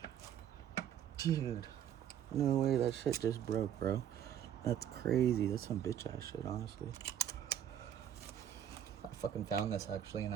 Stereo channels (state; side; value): quieter; left; 10.0 dB